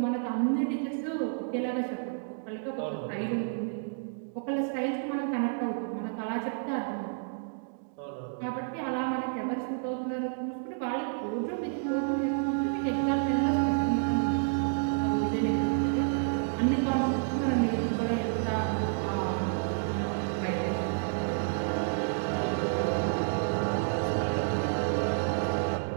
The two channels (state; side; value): silent; left; digital silence